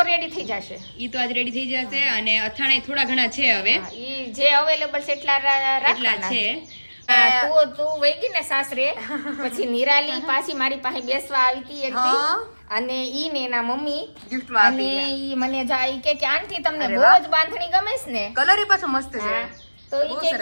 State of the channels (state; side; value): inverted; both; correlation -1.00